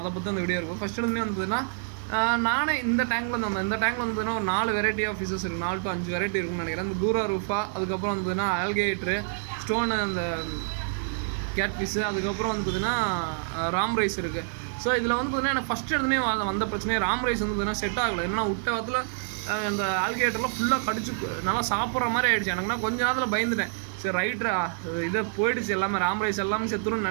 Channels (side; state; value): left; silent; digital silence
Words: பற்றி அந்த வீடியோ இருக்கும். ஃபஸ்ட் எடுத்துமே வந்ததுன்னா நானே இந்த டேங்கில் வந்ததுன்னா ஒரு 4 வெரைட்டி ஆஃப் ஃபிஷஸ் இருக்குது. 4 to 5 வெரைட்டி இருக்குன்னு நினைக்கிறேன். இந்த கூரா ரூஃபா, அதுக்கப்புறம் வந்ததுன்னா ஆல்கேட்ரு, ஸ்டோனு, அந்த கேட் ஃபிஷ்ஷு, அதுக்கப்புறம் வந்து பார்த்திங்கன்னா ராம் ரைஸ் இருக்குது. ஸோ இதில் வந்து பார்த்திங்கன்னா எனக்கு ஃபஸ்ட் எடுத்துனே வந்த பிரச்சனையே ராம் ரைஸ் வந்து பார்த்திங்கன்னா செட் ஆகலை. என்னன்னா விட்ட வாரத்தில் இந்த ஆல்கேட்டர்லாம் ஃபுல்லாக கடிச்சு நல்லா சாப்பிட்ற மாதிரி ஆகிடுச்சு. எனக்குன்னா கொஞ்ச நேரத்தில் பயந்துட்டேன். சரி ரைட்ரா, இதை போயிடுச்சு எல்லாமே, ராம் ரைஸ் எல்லாமே செத்துருன்னு